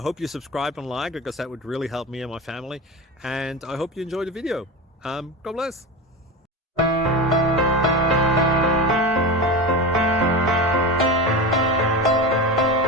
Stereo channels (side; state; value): both; normal; correlation 0.24